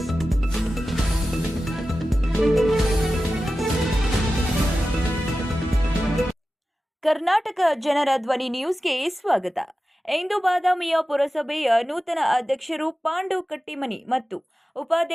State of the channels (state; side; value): normal; both; correlation 0.94